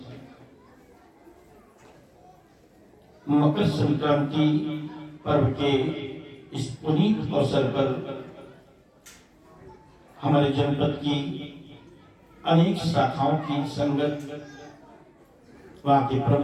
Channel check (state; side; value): identical; both; correlation 1.00